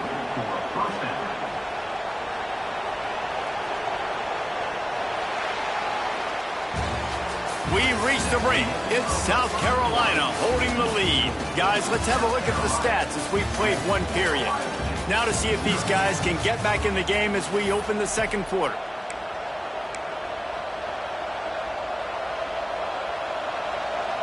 for a first down. We've reached the break. It's South Carolina holding the lead. Guys, let's have a look at the stats as we've played one period. Now to see if these guys can get back in the game as we open the second quarter.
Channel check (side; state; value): both; identical; correlation 1.00